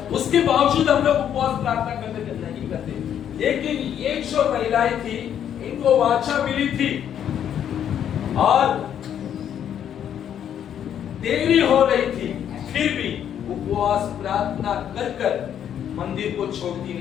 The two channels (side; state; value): right; quieter; 9.5 dB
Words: उसके बावजूद हम लोग उपवास प्रार्थना करने नहीं करते। लेकिन ये जो महिलाएं थी, इनको वाचा मिली थी और देरी हो रही थी, फिर भी उपवास प्रार्थना कर कर मंदिर को छोड़ती